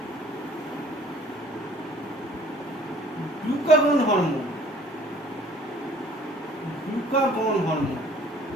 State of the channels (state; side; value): normal; both; correlation 0.54